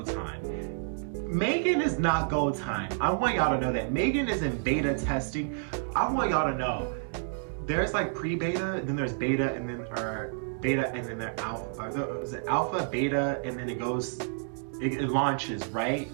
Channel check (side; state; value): left; silent; digital silence